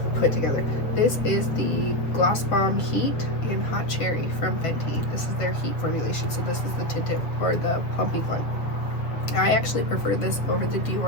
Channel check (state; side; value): late; right; 7.4 ms